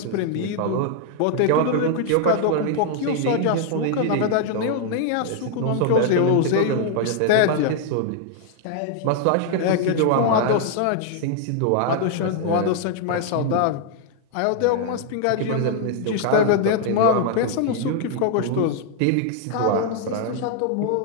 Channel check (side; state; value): both; different; correlation 0.00